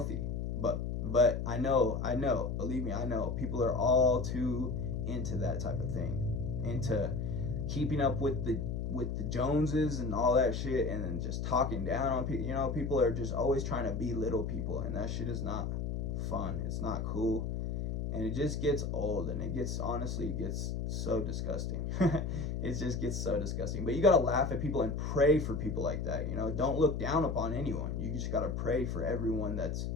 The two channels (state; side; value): noise; left; hum, 2 dB below the sound